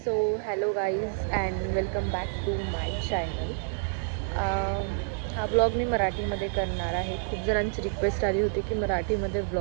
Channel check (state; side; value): silent; left; digital silence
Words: hello guys and welcome back to my channel. हा blog मी मराठीमध्ये करणार आहे. खूप जणांची request आली होती की मराठीमध्ये